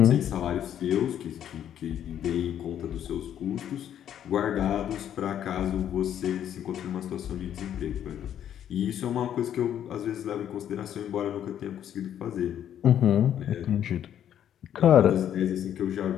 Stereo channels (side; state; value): right; quieter; 10.1 dB